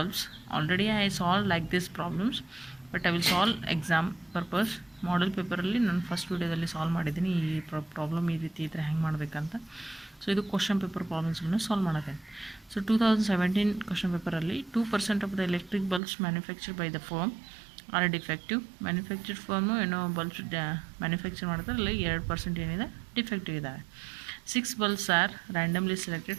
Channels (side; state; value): left; drops out; at 16.0 s